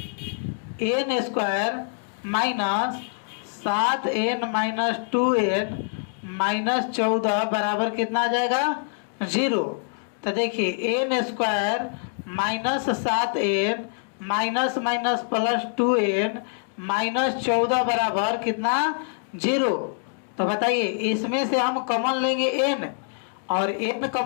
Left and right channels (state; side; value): silent; right; digital silence